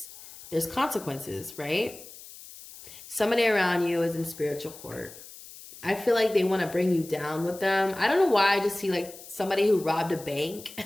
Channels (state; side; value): noise; left; hiss, 17 dB below the sound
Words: there's consequences, right? Somebody around you is in spiritual court. I feel like they want to bring you down with them. I don't know why. I just see like somebody who robbed a bank